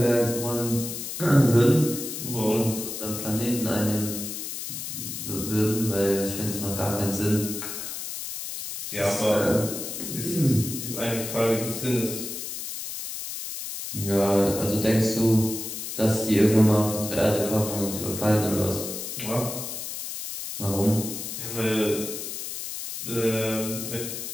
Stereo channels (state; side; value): noise; left; hiss, 6 dB below the sound